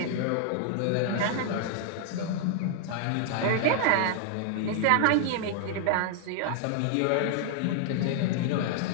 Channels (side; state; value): both; different; correlation 0.00